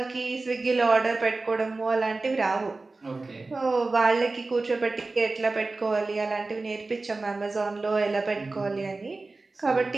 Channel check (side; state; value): left; quieter; 3.5 dB